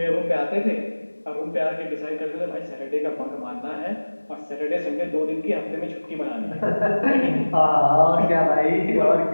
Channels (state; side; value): inverted; both; correlation -1.00